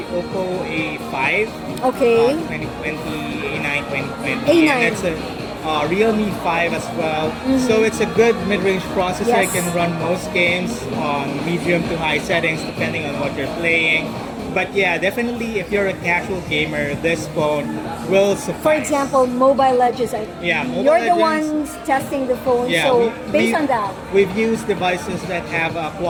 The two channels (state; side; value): identical; both; correlation 1.00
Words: Oppo A5. Okay. 2020, A9 2020. A9. And it's a Realme 5 as well. So it's a good mid-range processor. Yes. It can run most games on medium to high settings depending on what you're playing. But yeah, definitely if you're a casual gamer, this phone will suffice. For example, Mobile Legends. You're the ones testing the phone, so based on that. We've used devices that have a